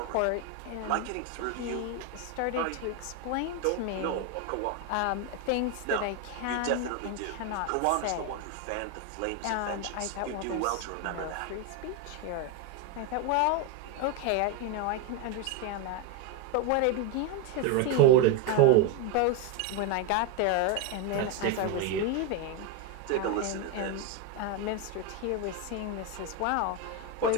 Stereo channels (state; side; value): different; both; correlation 0.02